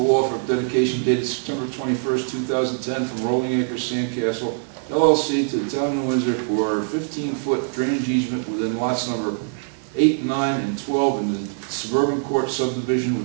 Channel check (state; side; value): silent; left; 59 dB below the other